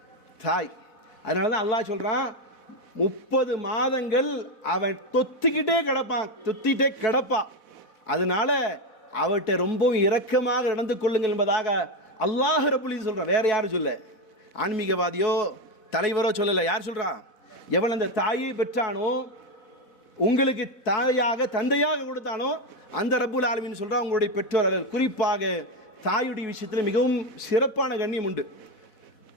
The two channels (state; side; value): late; right; 4.1 ms